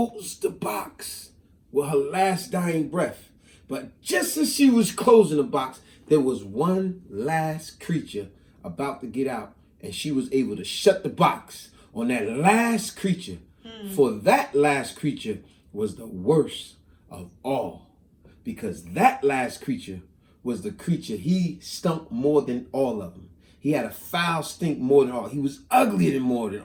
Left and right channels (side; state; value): both; identical; correlation 1.00